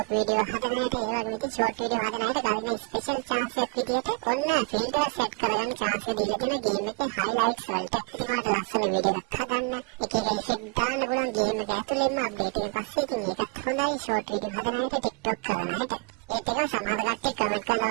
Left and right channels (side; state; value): left; quieter; 33.3 dB